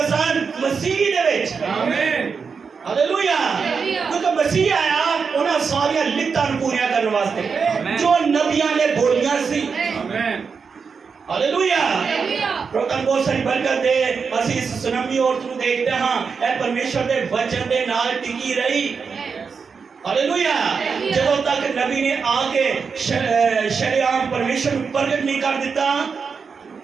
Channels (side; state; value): left; quieter; 5.6 dB